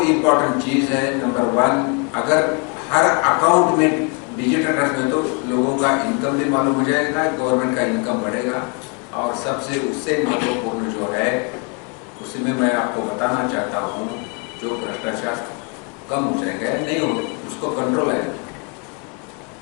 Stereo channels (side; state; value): right; quieter; 34.0 dB